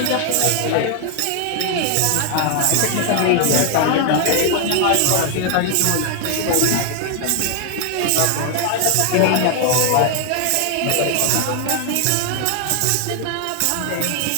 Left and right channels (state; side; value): different; both; correlation 0.00